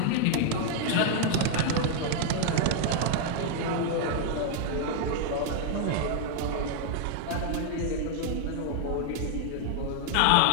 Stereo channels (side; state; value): both; different; correlation 0.00